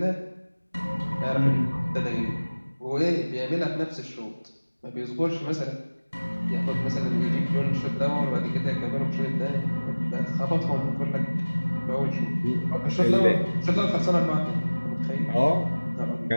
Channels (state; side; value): inverted; both; correlation -1.00